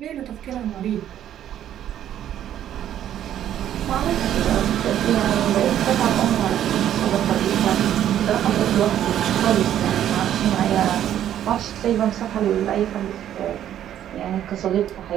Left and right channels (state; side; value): quieter; left; 11.0 dB